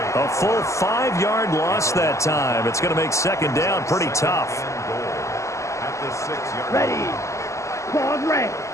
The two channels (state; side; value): late; right; 0.14 ms